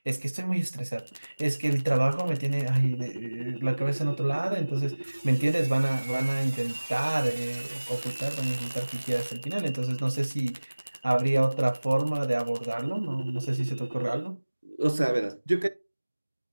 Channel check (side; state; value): both; inverted; correlation -1.00